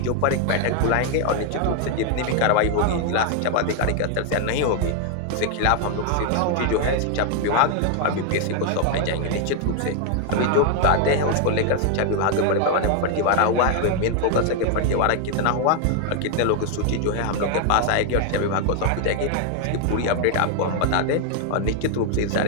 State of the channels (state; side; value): different; both; correlation 0.00